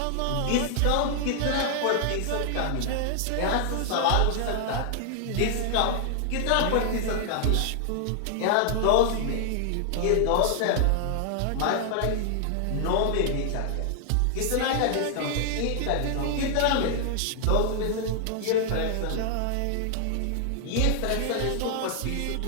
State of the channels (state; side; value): different; both; correlation 0.00